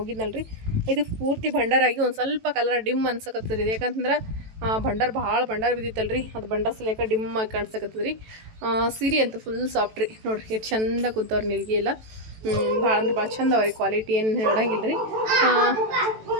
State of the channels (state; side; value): late; left; 18 ms